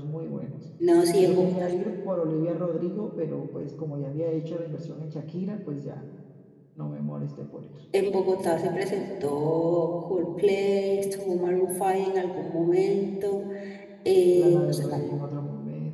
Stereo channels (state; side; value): identical; both; correlation 1.00